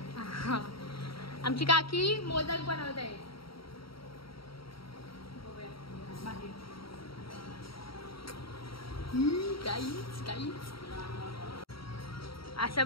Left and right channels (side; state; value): right; late; 0.75 ms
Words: आमची काकी मोदक बनवत आहे. काहीच असं